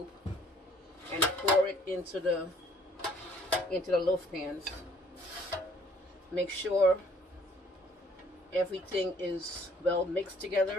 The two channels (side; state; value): both; normal; correlation 0.59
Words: and pour it into the loaf pans. Make sure everything is well mixed